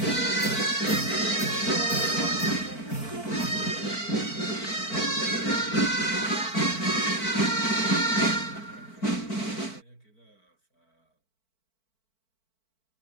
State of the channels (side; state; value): right; late; 4.5 ms